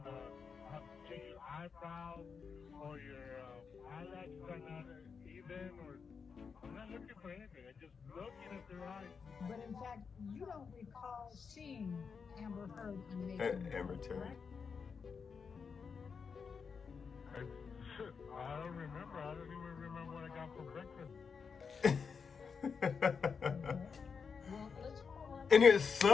have to change your eyebrows, or your eyelashes are not even, or I'm not looking for anything. I'm just looking at their eyes. But in fact, you don't recall seeing Amber Heard on May. Amber Terry. I don't remember. I don't even remember what I got for breakfast. Well, let's go on. And it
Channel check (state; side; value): quieter; right; 5.8 dB